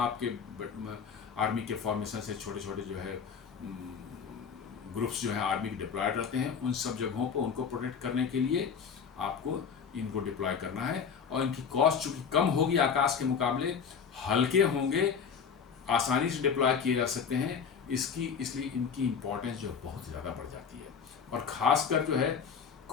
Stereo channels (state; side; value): quieter; right; 6.5 dB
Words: आपके आर्मी के फॉर्मेशन से छोटे छोटे जो है ग्रुप्स जो है आर्मी के डिप्लॉयड रहते हैं, उन सब जगहों पर उनको प्रोटेक्ट करने के लिए आपको इनको डिप्लॉय करना है। और इनकी कॉस्ट चूँकि कम होगी आकाश के मुकाबले, हल्के होंगे, आसानी से डिप्लॉय किए जा सकते हैं, इसलिए इनकी इम्पोर्टेंस जो बहुत ज़्यादा बढ़ जाती है। और ख़ासकर जो है